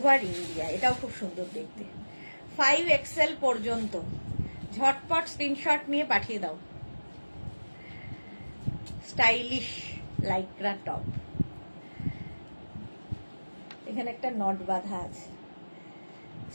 ইন্ডিয়া। এটাও খুব সুন্দর দেখতে, 5XL পর্যন্ত। ঝটপট স্ক্রিনশট নিয়ে পাঠিয়ে দাও। স্টাইলিশ লাইক্রা টপ, এখানে একটা নট বাঁধা আছে।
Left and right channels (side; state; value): both; inverted; correlation -1.00